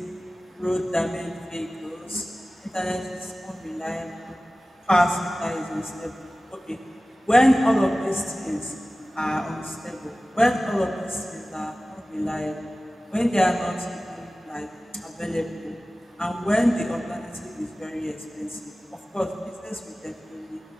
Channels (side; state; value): both; normal; correlation 0.97